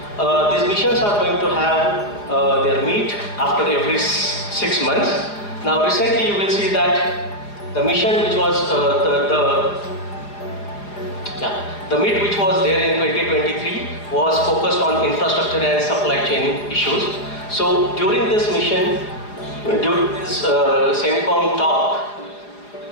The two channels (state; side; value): late; right; 4.9 ms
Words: These missions are going to have their meet after every 6 months. Now recently you will see that the mission which was the meet which was there in 2023 was focused on infrastructure and supply chain issues. So during this mission, during this Semicom talk,